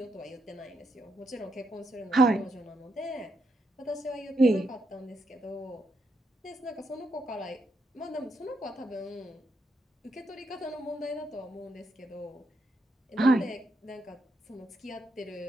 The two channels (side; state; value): both; normal; correlation 0.80